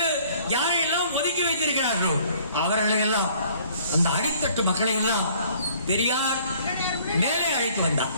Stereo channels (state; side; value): inverted; both; correlation -0.57